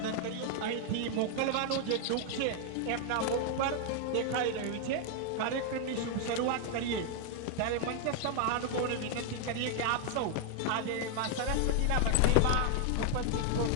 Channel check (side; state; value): both; different; correlation 0.00